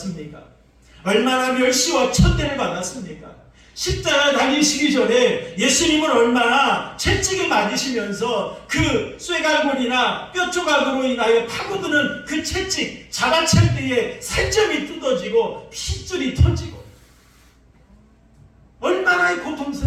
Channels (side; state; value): both; identical; correlation 1.00